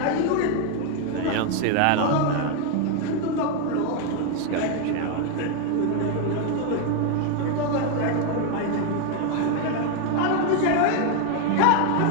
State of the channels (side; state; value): both; different; correlation 0.01